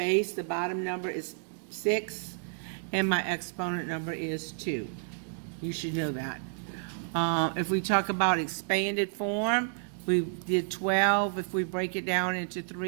the bottom number, is 6, and my exponent number is 2. You should know that. If we talk about expanded form, we did 12. If we break it down into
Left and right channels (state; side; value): silent; left; digital silence